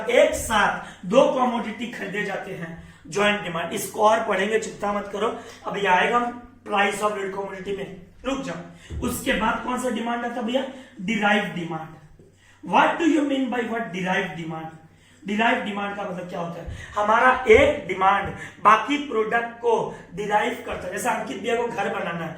एक साथ 2 कमोडिटी खरीदे जाते हैं, जॉइंट डिमांड। इसको और पढ़ेंगे, चिंता मत करो, अभी आएगा प्राइस ऑफ रीड कमोडिटी में, रुक जाओ। उसके बाद कौन सा डिमांड आता है भैया, derive demand. What do you mean by what derive demand. Derive demand का मतलब क्या होता है, हमारा एक डिमांड बाकी प्रोडक्ट को डिराइव करता है। जैसे अंकित भैया को घर बनाना है,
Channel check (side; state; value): both; identical; correlation 1.00